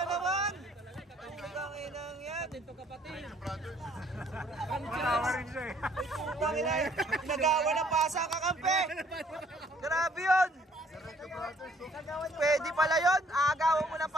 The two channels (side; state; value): both; normal; correlation 0.62